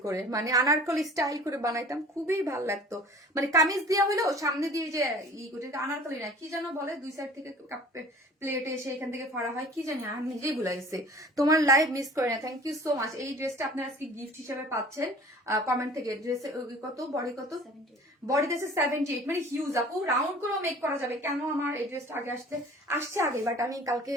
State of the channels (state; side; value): normal; both; correlation 0.46